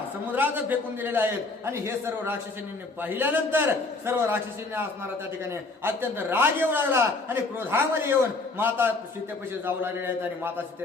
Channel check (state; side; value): quieter; right; 3.5 dB